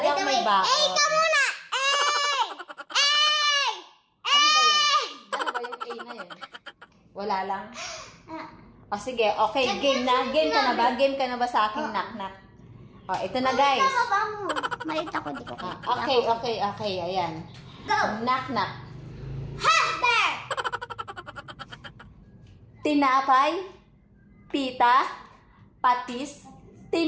ako may bako. Eh, ikaw muna! Ano ba yung A na yun? Wala lang? O sige, okay, game na. Game ka na ba? Game ka na ba sa aking knock-knock? O, ito na guys. Malit ako, di ko. Okay, ayan. Go! Knock-knock. Who's there? Tinapay, pita, patis,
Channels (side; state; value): both; identical; correlation 1.00